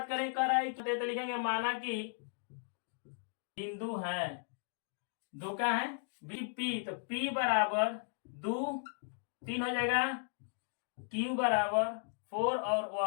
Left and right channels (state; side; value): silent; right; digital silence